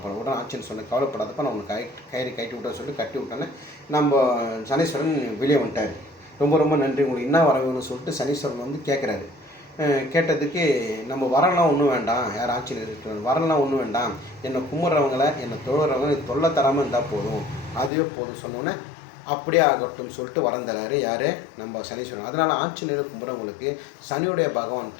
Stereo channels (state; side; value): drops out; right; at 17.9 s